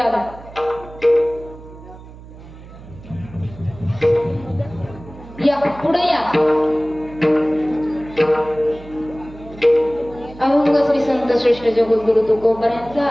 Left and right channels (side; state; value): right; noise; hum, 18 dB below the sound